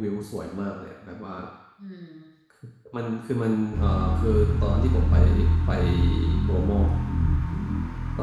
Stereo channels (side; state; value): both; identical; correlation 1.00